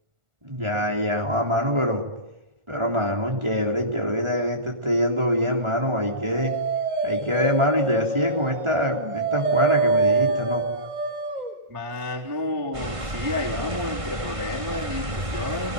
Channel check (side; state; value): left; late; 1.4 ms